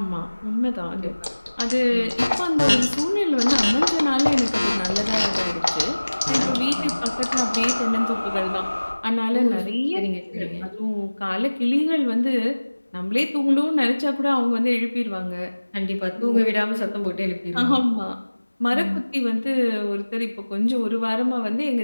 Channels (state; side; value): inverted; both; correlation -1.00